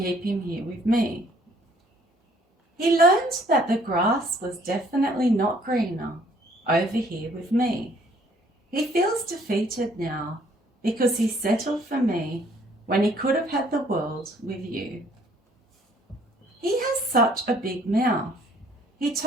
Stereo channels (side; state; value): both; normal; correlation 0.60